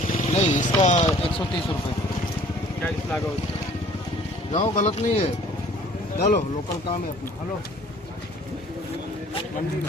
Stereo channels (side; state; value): both; normal; correlation 0.54